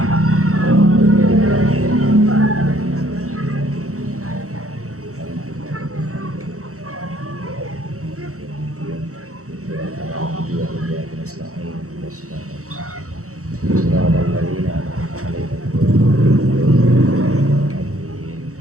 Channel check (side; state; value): left; late; 0.64 ms